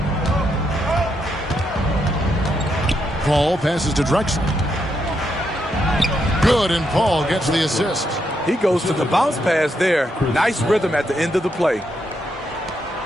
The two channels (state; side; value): normal; both; correlation 0.80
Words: Paul passes to Drexler. Good, and Paul gets the assist. He goes to the bounce pass there. Nice rhythm at the end of the play.